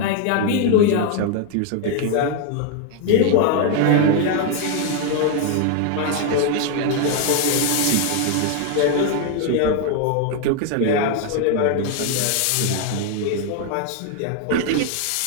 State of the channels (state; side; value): different; both; correlation 0.01